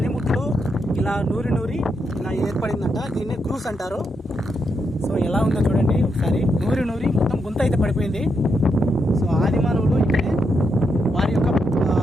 ఇలా నూరి ఇలా ఏర్పడిందంట. దీన్ని క్రూస్ అంటారు. సో ఎలా ఉందో చూడండి ఒకసారి. నూరి మొత్తం గుంత అయితే పడిపోయింది. సో ఆదిమానవులు ఇక్కడే వారి యొక్క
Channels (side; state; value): both; normal; correlation 0.81